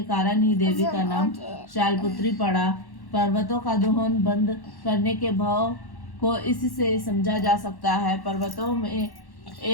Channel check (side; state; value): right; late; 1.1 ms